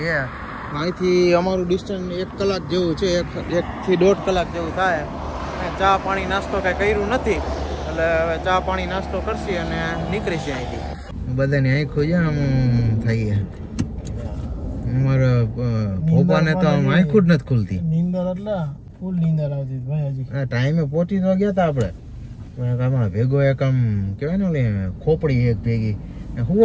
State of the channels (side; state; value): both; identical; correlation 1.00